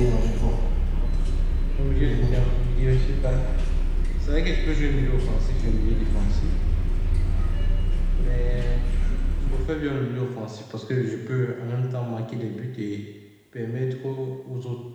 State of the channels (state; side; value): identical; both; correlation 1.00